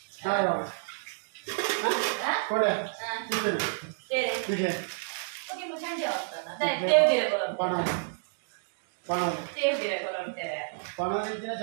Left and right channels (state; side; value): silent; left; digital silence